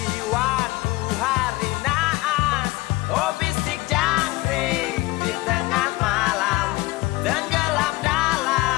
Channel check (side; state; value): right; quieter; 20.2 dB